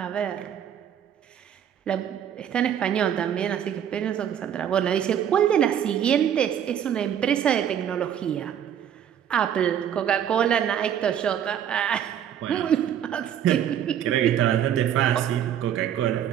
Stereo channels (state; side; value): quieter; left; 9.6 dB